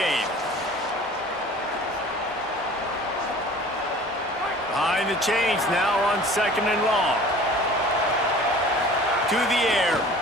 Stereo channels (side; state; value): both; normal; correlation 0.45